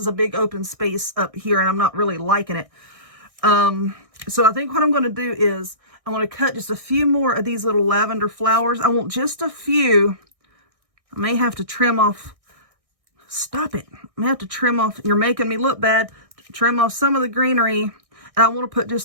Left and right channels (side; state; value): left; late; 1.6 ms